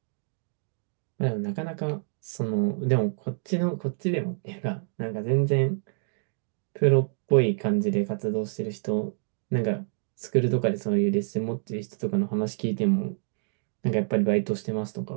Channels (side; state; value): left; silent; digital silence